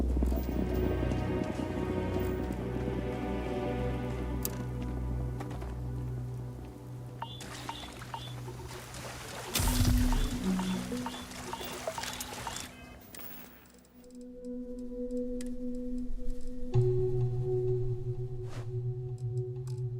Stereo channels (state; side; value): identical; both; correlation 1.00